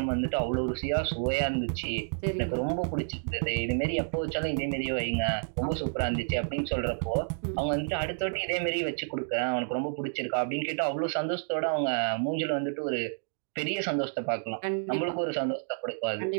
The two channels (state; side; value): silent; left; digital silence